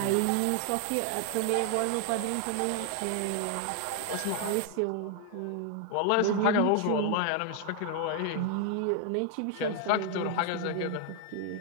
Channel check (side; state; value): both; different; correlation 0.00